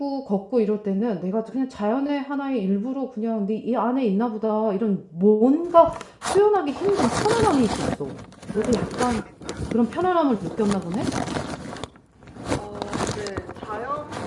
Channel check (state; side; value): identical; both; correlation 1.00